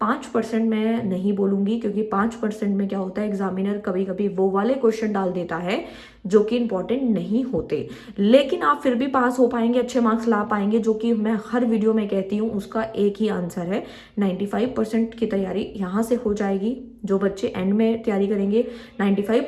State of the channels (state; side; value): identical; both; correlation 1.00